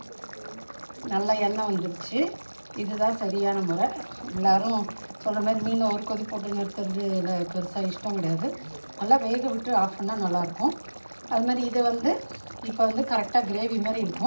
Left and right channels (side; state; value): both; inverted; correlation -1.00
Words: நல்லா எண்ணெய் வந்துடுச்சு. இதுதான் சரியான முறை. எல்லோரும் சொல்கிற மாதிரி மீனை ஒரு கொதி போட்டு நிறுத்துறது இல்லை, பெருசாக இஷ்டம் கிடையாது. நல்லா வேக விட்டு ஆஃப் பண்ணால் நல்லாயிருக்கும். அது மாதிரி இதை இப்போ கரெக்டாக கிரேவி மாதிரி